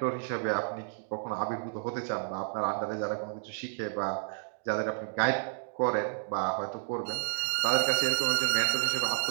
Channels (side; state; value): left; silent; digital silence